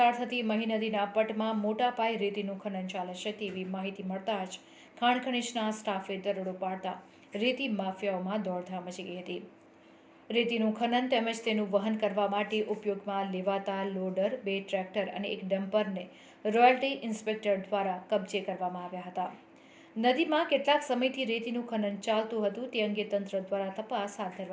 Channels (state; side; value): identical; both; correlation 1.00